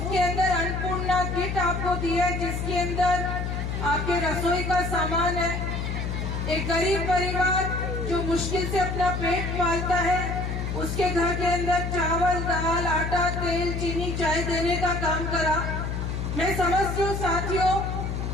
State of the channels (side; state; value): left; noise; hum, 2 dB below the sound